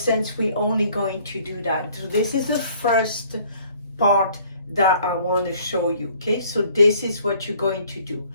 since we're only going to do that. So this is the first part that I want to show you. Okay, so this is what you're going to do.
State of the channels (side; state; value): both; inverted; correlation -0.58